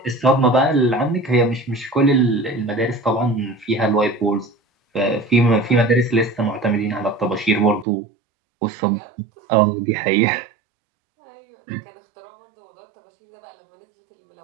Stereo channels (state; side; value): drops out; left; at 7.9 s